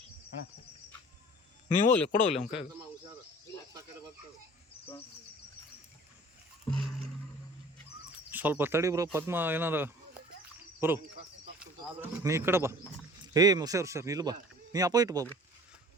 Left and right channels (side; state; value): both; normal; correlation 0.47